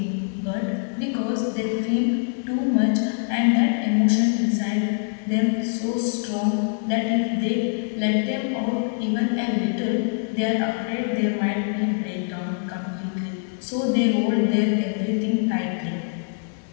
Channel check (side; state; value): right; silent; digital silence